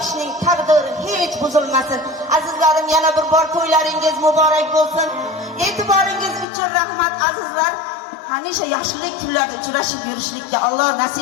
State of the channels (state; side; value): drops out; right; at 6.5 s